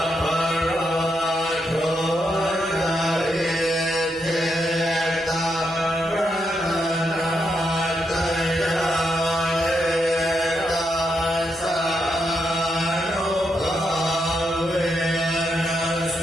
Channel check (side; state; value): both; normal; correlation 0.81